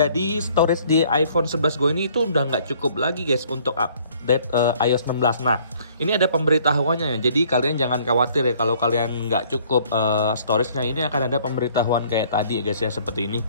storage di iPhone 11 gue ini itu udah nggak cukup lagi guys untuk update iOS 16. Nah, ini ada pemberitahuannya ya. Jadi kalian jangan khawatir ya kalau kalian nggak cukup storage-nya. Ini akan ada pemberitahuan kayak tadi guys ya, seperti ini.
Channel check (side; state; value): both; inverted; correlation -0.59